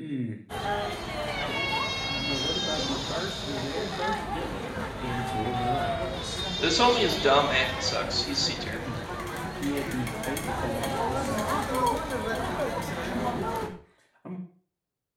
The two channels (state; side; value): identical; both; correlation 1.00